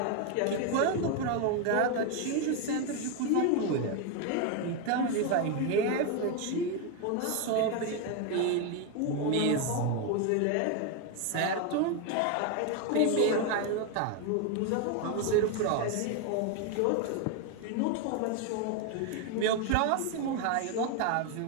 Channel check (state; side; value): different; both; correlation 0.02